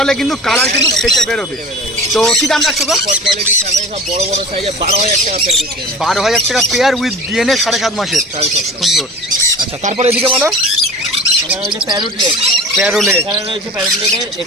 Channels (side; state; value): both; normal; correlation 0.38